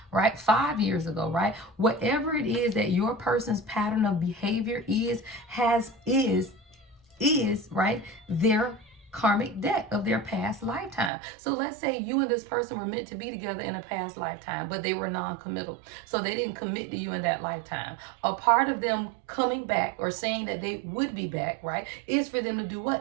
right? 5 years ago, right? Whatever it is that your person's pattern of behavior is right, their karmic debt of their past lifetime. So let's say you and this person were meant to be together in a past lifetime, but they were non-committal. So they didn't commit to you in that lifetime. A part of them coming back or saying that they would be back, right, is for them to do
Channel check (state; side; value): drops out; left; at 11.1 s